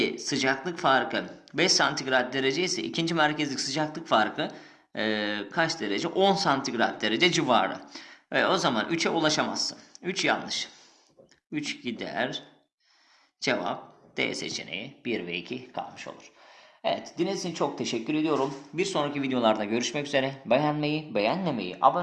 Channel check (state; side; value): identical; both; correlation 1.00